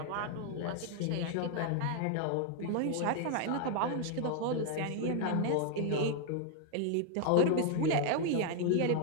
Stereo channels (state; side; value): different; both; correlation 0.00